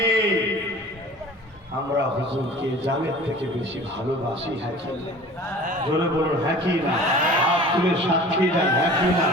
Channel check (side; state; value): both; normal; correlation 0.43